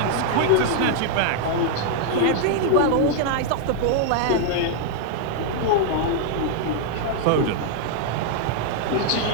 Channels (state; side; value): different; both; correlation 0.00